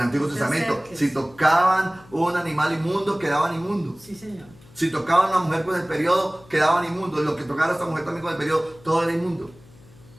no te Testamento, acerques. si tocaban un animal inmundo, quedaban inmundos. Sí, señor. Si tocaban a una mujer con el periodo, quedaban inmundos. Y lo que tocara a esta mujer también con el periodo, todo era inmundo.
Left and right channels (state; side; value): noise; left; hum, 25 dB below the sound